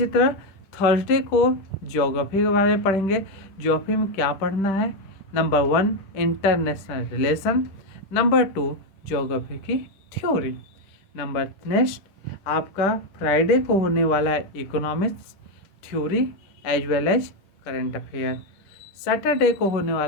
तरह थर्सडे को ज्योग्राफी के बारे में पढ़ेंगे। ज्योग्राफी में क्या पढ़ना है? Number 1 international relation, number 2 geography की थ्योरी। नंबर नेक्स्ट आपका फ्राइडे को होने वाला है economics theory as well as current affair. Saturday को होने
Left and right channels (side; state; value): right; late; 10 ms